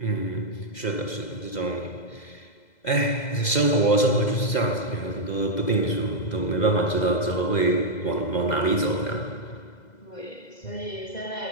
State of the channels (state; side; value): late; right; 2.0 ms